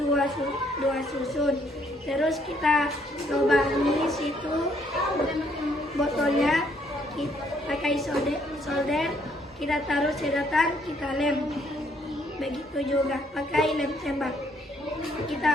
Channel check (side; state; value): both; normal; correlation 0.68